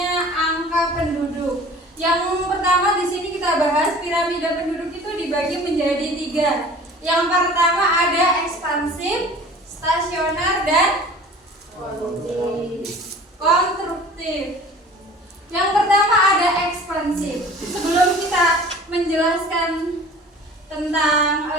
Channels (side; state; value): both; normal; correlation 0.44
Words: angka penduduk. Yang pertama di sini kita bahas piramida penduduk itu dibagi menjadi 3. Yang pertama ada ekspansif, stasioner, dan konstruktif. Yang pertama ada ekspansif. Sebelum kita menjelaskan tentang